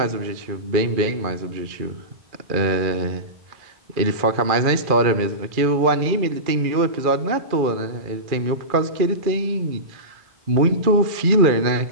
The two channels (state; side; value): late; left; 2.4 ms